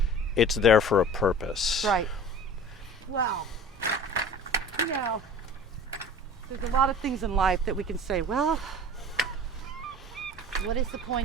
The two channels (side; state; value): both; normal; correlation 0.40